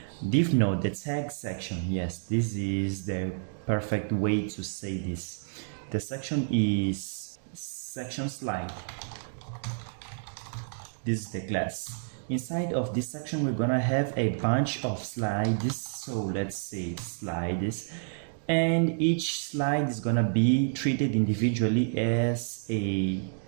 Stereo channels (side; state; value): left; silent; digital silence